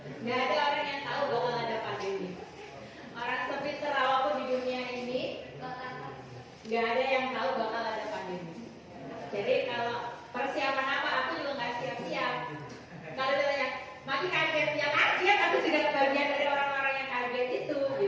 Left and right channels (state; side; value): identical; both; correlation 1.00